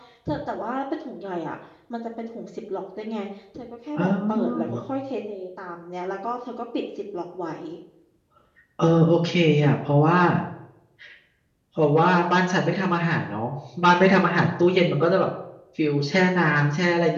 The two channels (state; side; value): identical; both; correlation 1.00